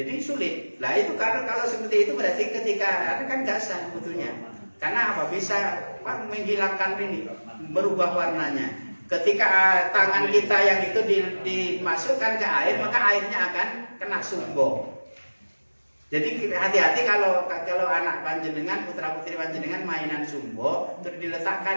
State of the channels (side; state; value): both; inverted; correlation -1.00